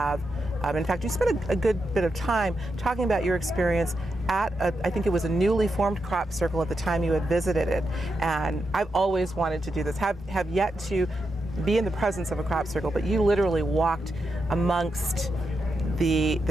In fact, you spent a good bit of time talking about your experience at, I think it was a newly formed crop circle at the time you had visited it. And I've always wanted to do this, have yet to be in the presence of a crop circle, but you literally walked amongst the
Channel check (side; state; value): both; normal; correlation 0.86